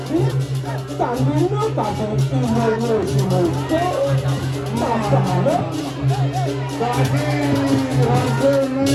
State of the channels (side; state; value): both; identical; correlation 1.00